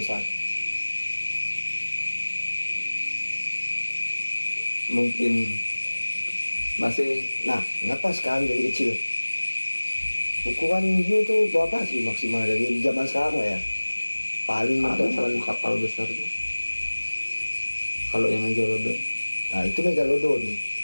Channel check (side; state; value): both; inverted; correlation -1.00